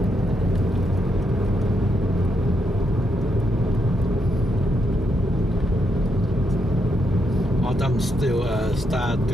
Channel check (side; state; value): both; normal; correlation 0.80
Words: Autumn still start